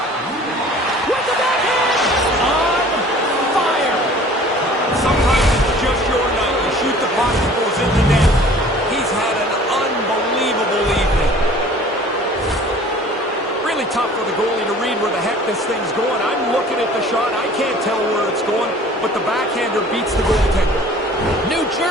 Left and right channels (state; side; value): normal; both; correlation 0.48